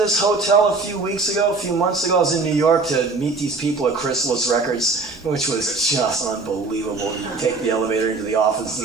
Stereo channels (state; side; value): quieter; left; 3.8 dB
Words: hotel a few months ago. I was in New York to meet these people at Chrysalis Records, which was just unbelievable. You take the elevator into the office